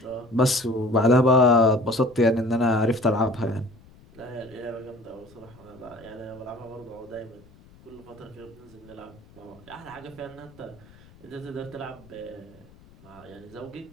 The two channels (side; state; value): left; noise; rumble, 25 dB below the sound